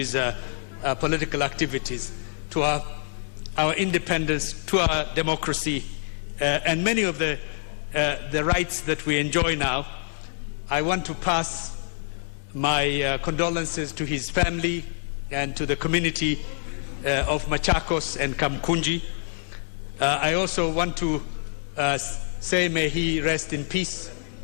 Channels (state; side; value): silent; right; 61 dB below the other